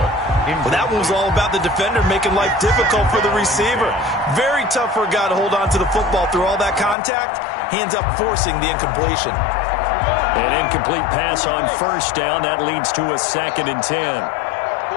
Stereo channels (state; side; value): drops out; right; at 7.0 s